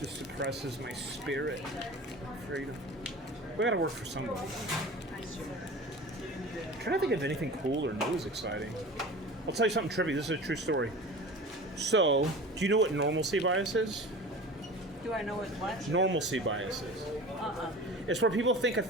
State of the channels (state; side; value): normal; both; correlation 0.37